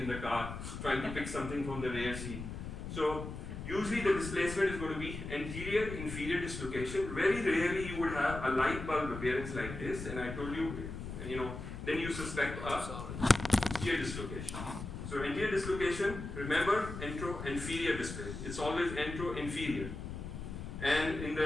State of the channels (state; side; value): noise; left; rumble, 8 dB below the sound